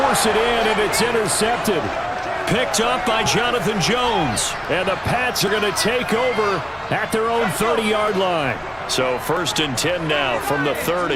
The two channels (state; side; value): identical; both; correlation 1.00